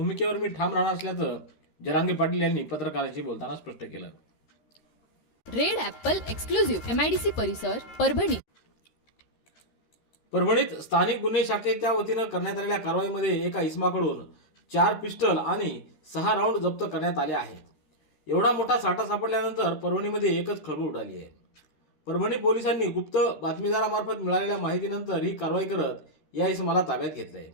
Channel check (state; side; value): late; right; 13 ms